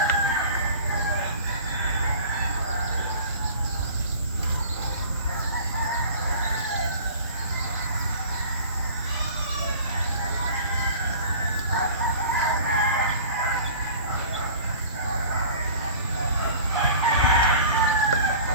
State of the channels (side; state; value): both; inverted; correlation -0.43